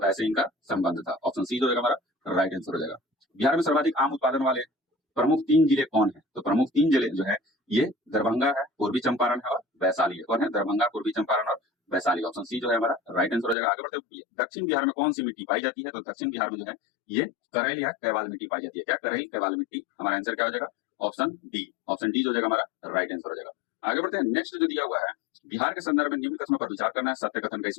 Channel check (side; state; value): right; drops out; at 13.6 s